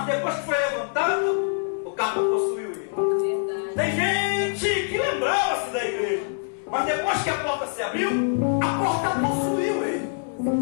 depois que foi levantado, o cargo possuiu ele. Tem gente que lembrava-se da igreja, mas depois que a porta se abriu, a porta possuiu ele.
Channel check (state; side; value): silent; right; 62 dB below the other